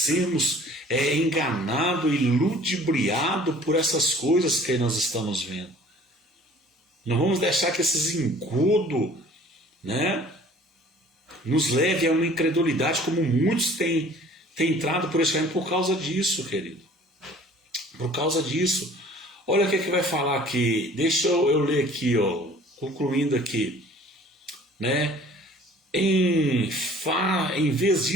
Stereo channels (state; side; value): normal; both; correlation 0.50